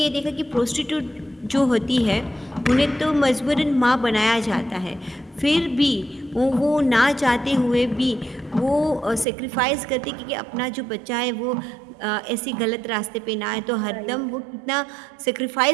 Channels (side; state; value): left; drops out; at 9.2 s